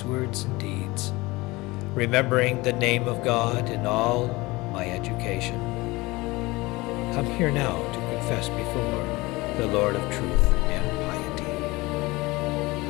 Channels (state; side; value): quieter; right; 22.0 dB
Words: words and deeds, remembering the name of God in all my education. Come here now to confess before the Lord of truth and piety.